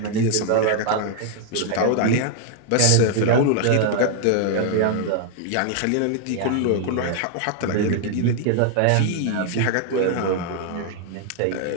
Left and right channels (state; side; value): different; both; correlation 0.00